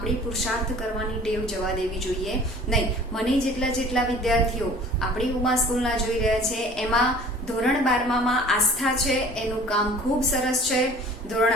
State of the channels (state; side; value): normal; both; correlation 0.48